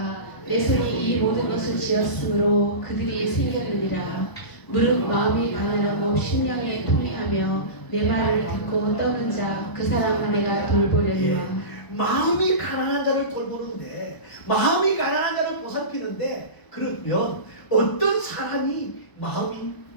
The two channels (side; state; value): right; late; 1.0 ms